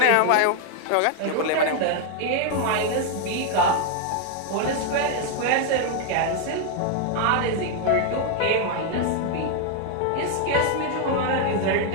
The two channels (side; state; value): both; different; correlation 0.00